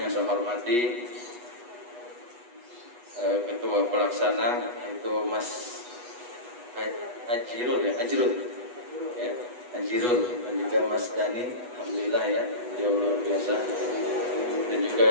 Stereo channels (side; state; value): left; late; 8.2 ms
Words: saya hormati Ketua Pelaksana itu Mas Ajirul ya, Ajirul dan juga Mas Dani, alhamdulillah ya, dia luar biasa, dan